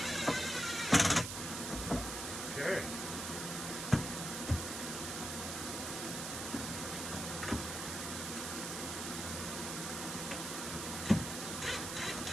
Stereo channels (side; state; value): right; noise; hiss, 4 dB below the sound